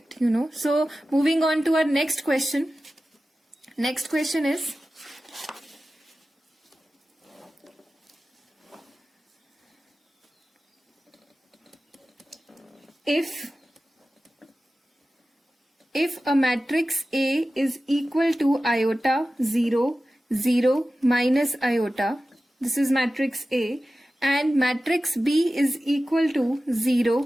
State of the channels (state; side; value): normal; both; correlation 0.95